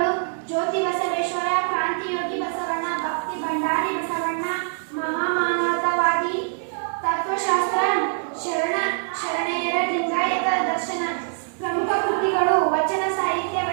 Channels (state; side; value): silent; left; digital silence